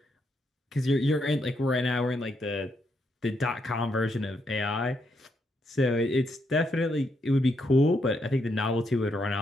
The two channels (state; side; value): normal; both; correlation 0.78